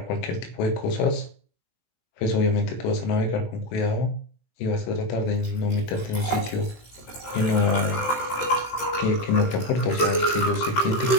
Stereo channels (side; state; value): right; late; 17 ms